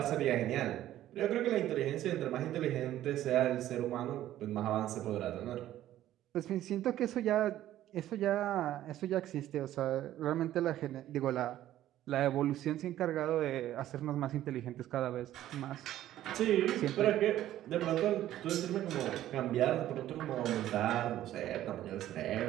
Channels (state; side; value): quieter; left; 13.1 dB